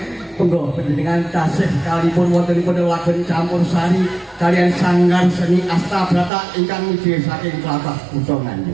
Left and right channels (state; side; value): drops out; left; at 6.3 s